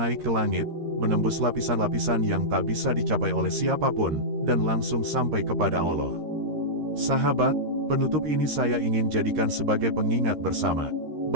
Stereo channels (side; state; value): left; late; 13 ms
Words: ke langit, menembus lapisan-lapisan yang tak bisa dicapai oleh siapapun, dan langsung sampai kepada Allah. Sahabat, penutup ini saya ingin jadikan sebagai pengingat bersama,